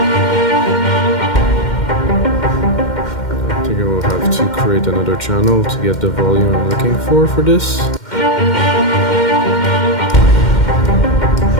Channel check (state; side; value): late; right; 2.1 ms